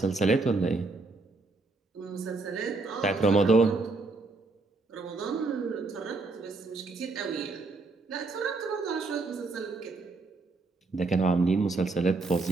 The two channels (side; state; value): left; quieter; 3.7 dB